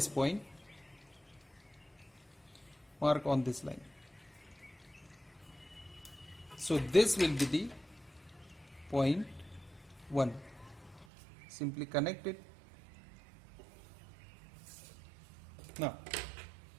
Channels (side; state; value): left; drops out; at 11.1 s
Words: point mark on this line. So this will be the point 1. Simply connect it. Now